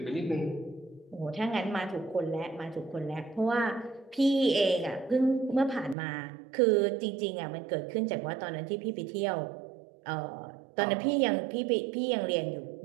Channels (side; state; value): left; drops out; at 6.0 s